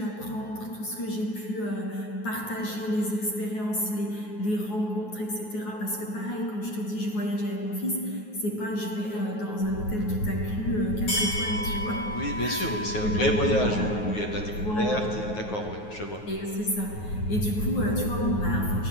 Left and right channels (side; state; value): right; late; 9.5 ms